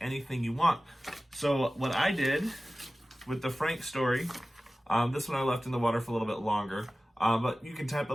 you want. So what I did with the Frank story, this one I left in the water for a little bit longer, but you can type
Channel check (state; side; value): normal; both; correlation 0.96